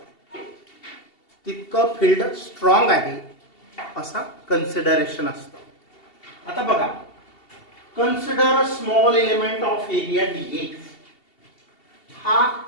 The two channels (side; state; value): right; late; 2.7 ms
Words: तितकं फील्ड स्ट्रॉंग आहे असा कन्सिडरेशन असतं. आता बघा, consider small element of area DA. हा